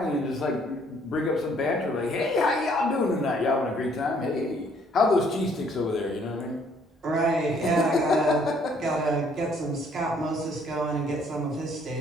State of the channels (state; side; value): normal; both; correlation 0.63